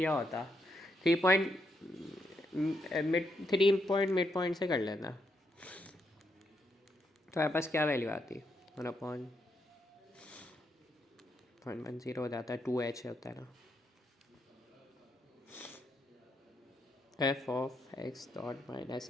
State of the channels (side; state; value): both; normal; correlation 0.79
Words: होता, 3 पॉइंट मिड पॉइंट से कर लेना, तो हमारे पास क्या वैल्यू आती है? 1/110 हो जाता है, 2h होता है ना। F of x dot